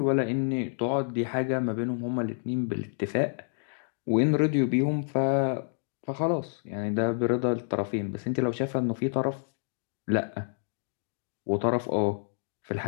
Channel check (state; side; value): silent; right; digital silence